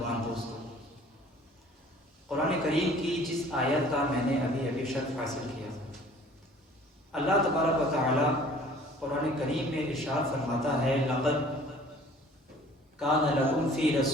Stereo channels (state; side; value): normal; both; correlation 0.51